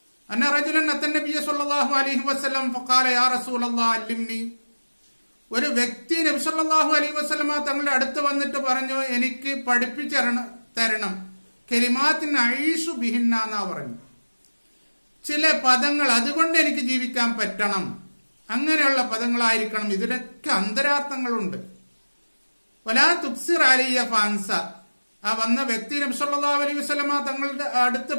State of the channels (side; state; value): both; inverted; correlation -1.00